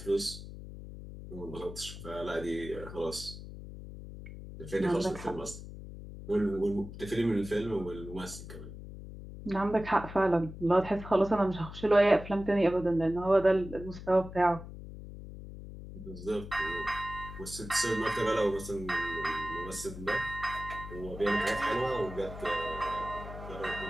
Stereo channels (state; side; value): noise; left; hum, 12 dB below the sound